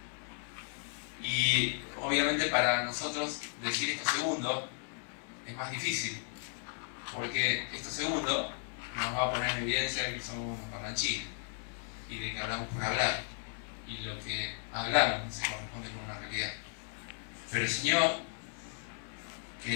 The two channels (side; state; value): right; silent; 54 dB below the other